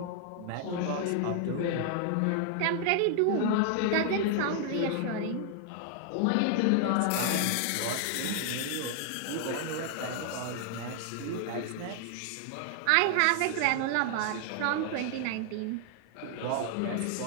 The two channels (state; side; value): different; both; correlation 0.00